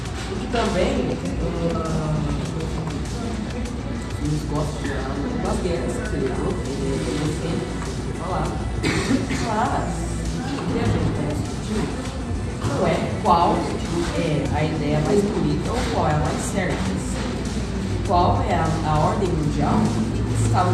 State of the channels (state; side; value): identical; both; correlation 1.00